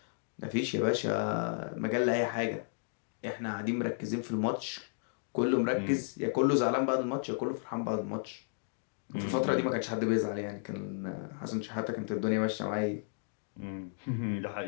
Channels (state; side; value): silent; right; digital silence